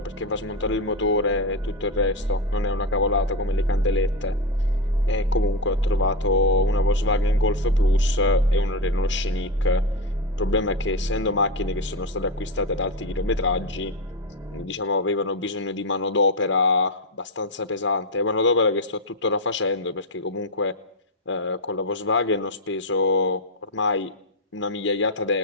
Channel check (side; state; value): both; normal; correlation 0.11